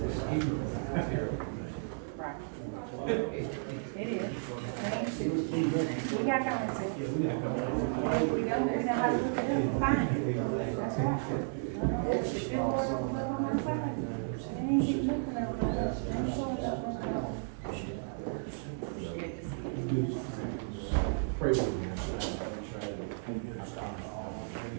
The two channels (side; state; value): left; silent; digital silence